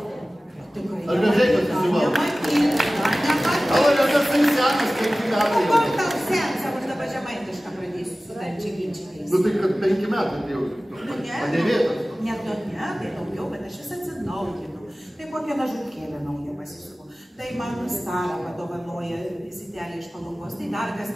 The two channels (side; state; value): both; normal; correlation 0.97